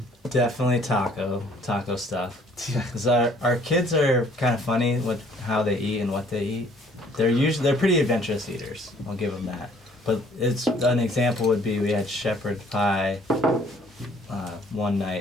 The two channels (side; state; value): both; normal; correlation 0.59